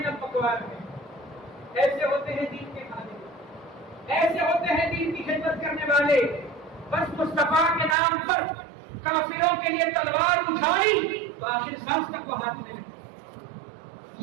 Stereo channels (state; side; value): drops out; left; at 8.0 s